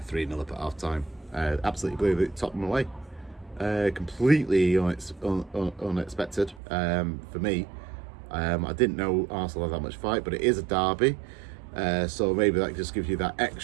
up at half time. Absolutely blew Tottenham away. Completely unexpected for me. I didn't know Arsenal had that much fight, but it is a derby. So maybe that just gives you that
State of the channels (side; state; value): left; drops out; at 6.6 s